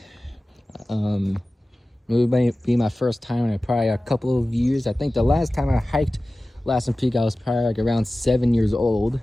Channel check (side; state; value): both; normal; correlation 0.96